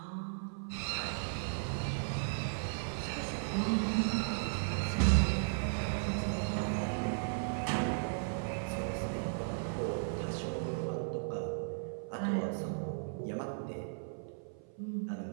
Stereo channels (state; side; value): silent; left; 54 dB below the other